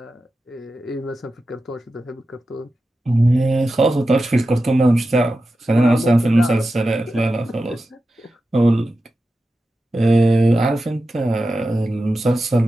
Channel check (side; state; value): both; normal; correlation 0.92